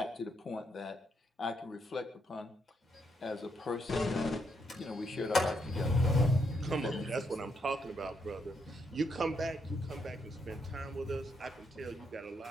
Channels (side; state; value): both; normal; correlation 0.78